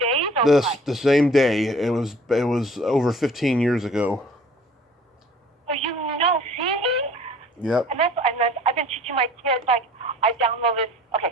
or what? The same day. It was over 15 years ago. So see? Yep. And I've been teaching my kids, like, I downloaded, okay,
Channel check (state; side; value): normal; both; correlation 0.51